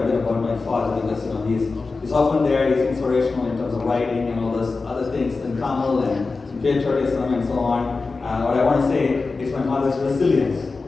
bit about my father because he's often there, he's inspirational in terms of writing and all those other things, and Tamil and patriotism and so on. What I want to say is my mother's resilience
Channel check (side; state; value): right; quieter; 4.0 dB